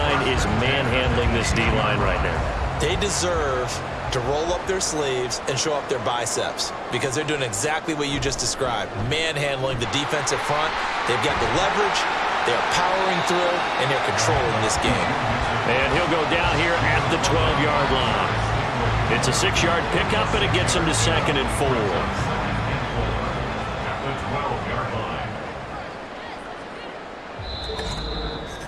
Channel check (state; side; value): identical; both; correlation 1.00